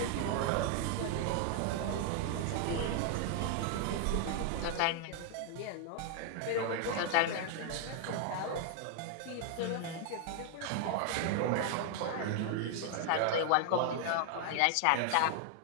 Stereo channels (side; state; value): both; different; correlation 0.00